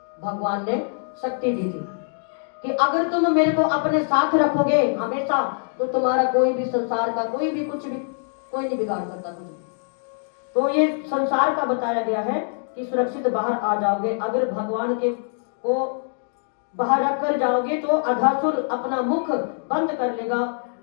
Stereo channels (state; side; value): silent; right; digital silence